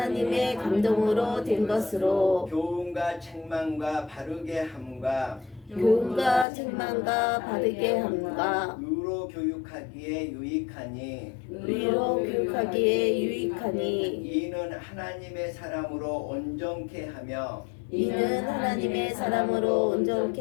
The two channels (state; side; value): drops out; right; at 6.5 s